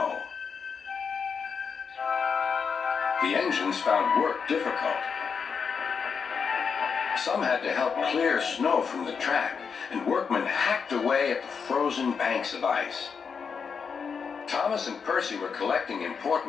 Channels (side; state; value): right; quieter; 6.0 dB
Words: The engines found work difficult. Some had to help clear snow from the track, and workmen hacked away at the frozen banks of ice. Thomas and Percy were collecting